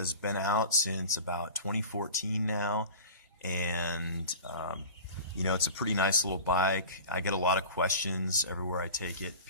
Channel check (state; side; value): inverted; both; correlation -0.38